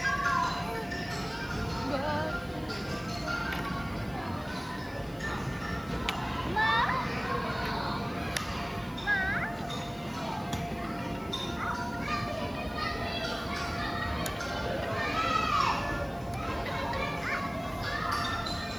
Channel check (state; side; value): noise; left; hiss, 25 dB below the sound